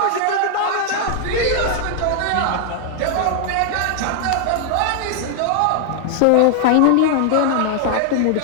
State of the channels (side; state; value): both; different; correlation 0.00